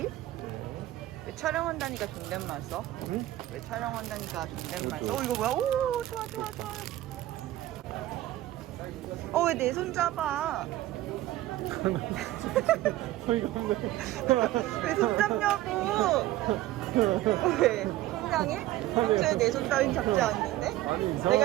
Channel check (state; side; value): quieter; left; 15.5 dB